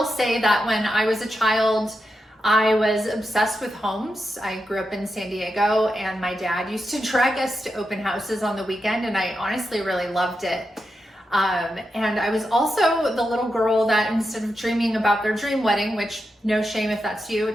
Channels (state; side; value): normal; both; correlation 0.87